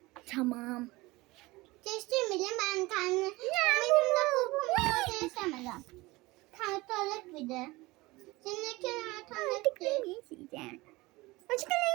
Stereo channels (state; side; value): quieter; left; 21.4 dB